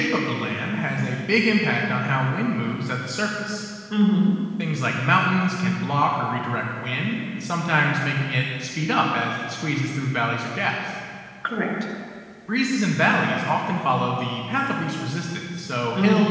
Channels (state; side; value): identical; both; correlation 1.00